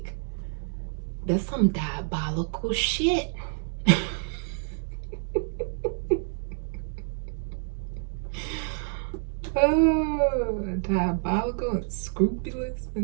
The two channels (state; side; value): silent; left; digital silence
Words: that's some diabolical shit. Oh, diabolical and scrupulous.